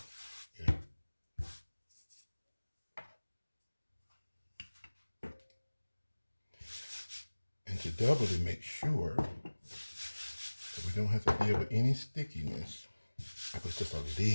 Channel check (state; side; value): inverted; both; correlation -1.00